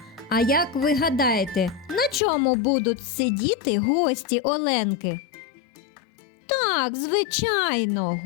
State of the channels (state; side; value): drops out; right; at 2.2 s